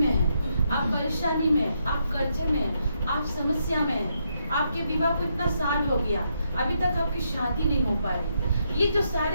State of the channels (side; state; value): both; inverted; correlation -0.79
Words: हैं, आप परेशानी में, आप कर्जे में, आप समस्या में हैं, आपके विवाह को इतना साल हो गया, अभी तक आपकी शादी नहीं हो पा रही, ये जो